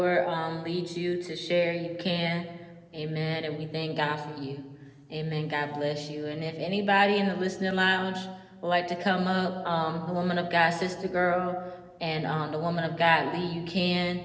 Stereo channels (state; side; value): identical; both; correlation 1.00